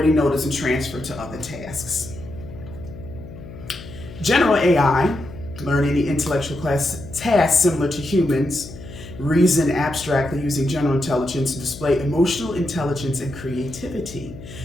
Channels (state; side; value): noise; left; hum, 15 dB below the sound